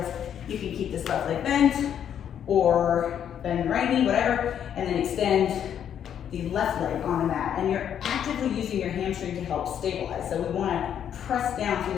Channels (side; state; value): right; quieter; 9.2 dB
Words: you can keep this left leg bent, or bend the right knee, whatever, and then extend the left leg on the mat. And you're actively using your hamstring to help stabilize. So we wanna press down through